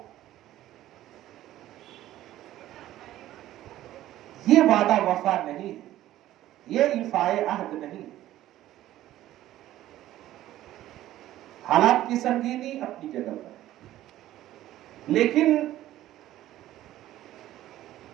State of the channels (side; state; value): left; quieter; 14.1 dB